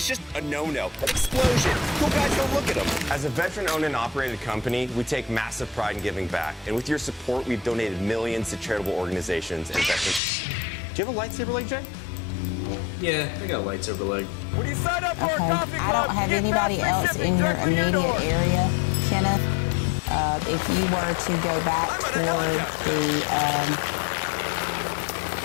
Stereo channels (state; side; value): drops out; right; at 10.2 s